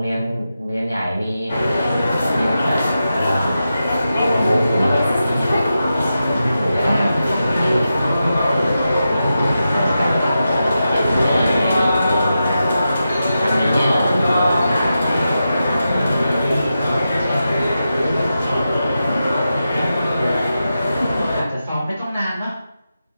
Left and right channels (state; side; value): inverted; both; correlation -0.90